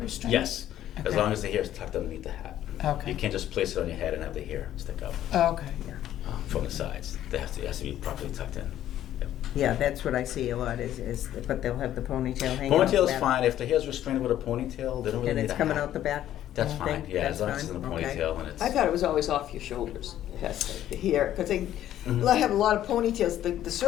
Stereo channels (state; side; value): quieter; right; 12.1 dB